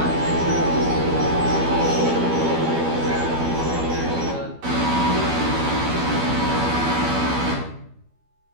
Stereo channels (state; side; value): late; left; 12 ms